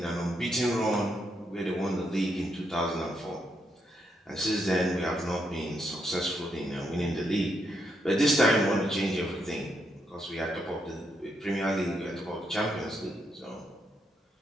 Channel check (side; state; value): both; normal; correlation 0.79